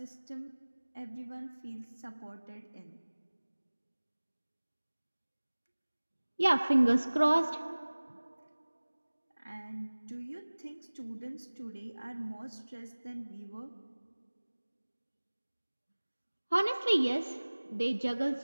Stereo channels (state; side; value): inverted; both; correlation -1.00